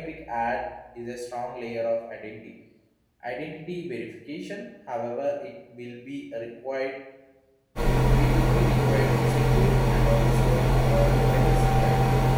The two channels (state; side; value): identical; both; correlation 1.00